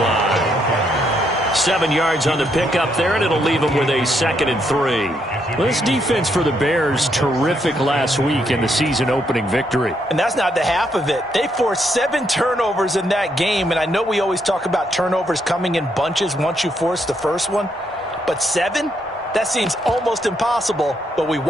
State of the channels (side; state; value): both; normal; correlation 0.76